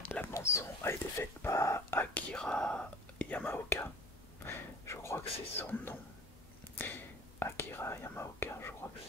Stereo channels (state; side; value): normal; both; correlation 0.42